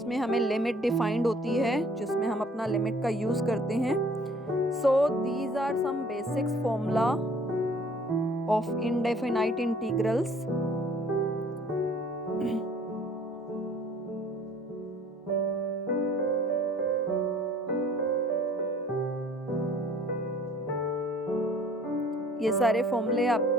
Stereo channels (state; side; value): normal; both; correlation 0.55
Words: हमें limit defined होती है, जिसमें हम अपना limit का use करते हैं. So these are some basics formula of indefinite integrals. ये सारे फॉर्मूले आप